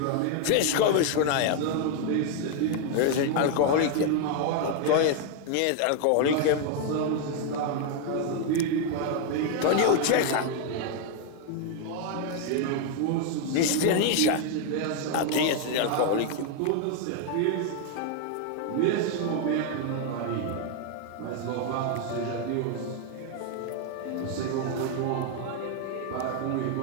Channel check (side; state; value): both; different; correlation 0.00